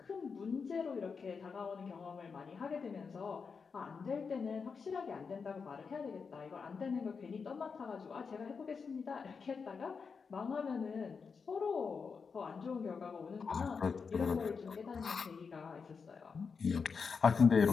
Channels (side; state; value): right; quieter; 5.4 dB